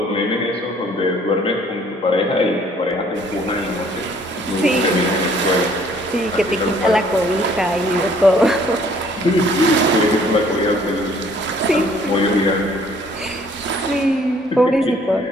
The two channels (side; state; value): both; normal; correlation 0.59